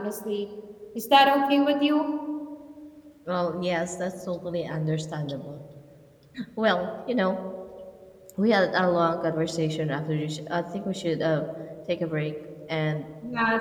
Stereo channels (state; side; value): identical; both; correlation 1.00